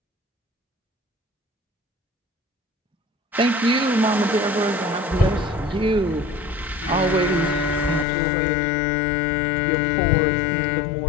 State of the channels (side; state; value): right; drops out; at 8.1 s